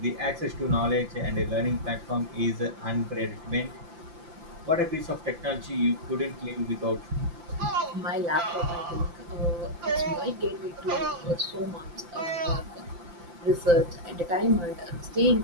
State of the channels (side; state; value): left; late; 5.8 ms